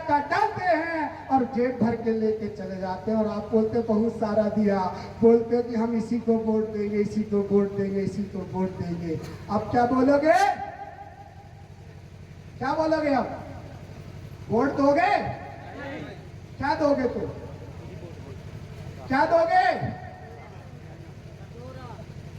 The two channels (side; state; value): both; identical; correlation 1.00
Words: डालते हैं और जेब भर के लेके चले जाते हैं। और आप बोलते बहुत सारा दिया, बोलते कि हम इसी को वोट देंगे, इसी को वोट देंगे, इसी को वोट देंगे। अब क्या बोलोगे? क्या बोलोगे? अब वोट दोगे? क्या दोगे? तो क्या दोगे?